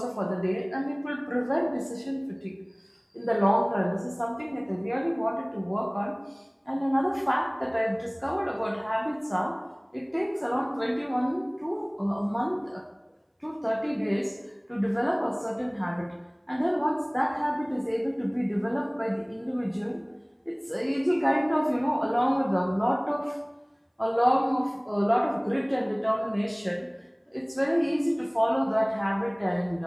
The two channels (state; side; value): identical; both; correlation 1.00